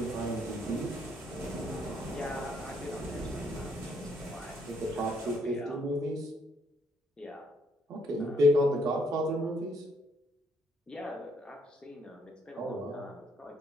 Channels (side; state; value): both; normal; correlation 0.70